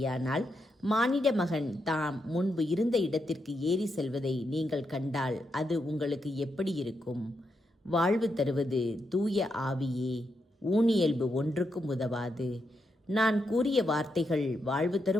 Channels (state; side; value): normal; both; correlation 0.83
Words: மானிட மகன் தாம் முன்பு இருந்த இடத்திற்கு ஏறி செல்வதை நீங்கள் கண்டால் அது உங்களுக்கு எப்படி இருக்கும்? வாழ்வு தருவது தூய ஆவியே. ஊனியல்பு ஒன்றுக்கும் உதவாது. நான் கூறிய வார்த்தைகள் வாழ்வு